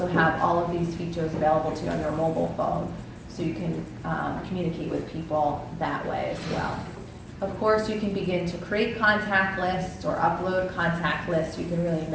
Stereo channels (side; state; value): both; identical; correlation 1.00